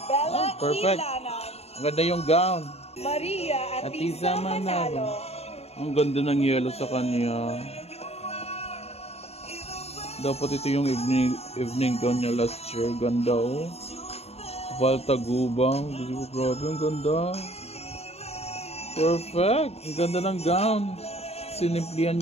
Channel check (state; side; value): late; right; 0.30 ms